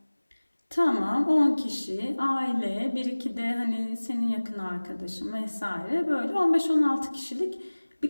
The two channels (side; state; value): both; inverted; correlation -1.00